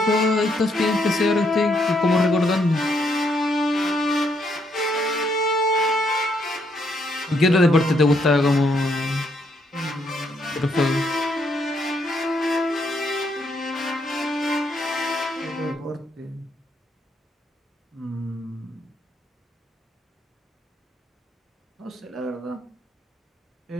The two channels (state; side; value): normal; both; correlation 0.74